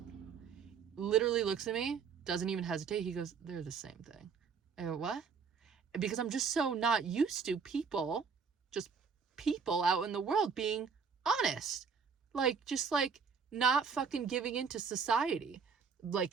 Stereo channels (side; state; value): left; quieter; 5.9 dB